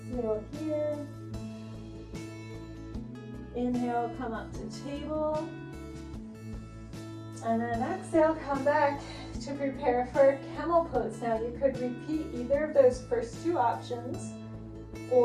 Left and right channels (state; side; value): identical; both; correlation 1.00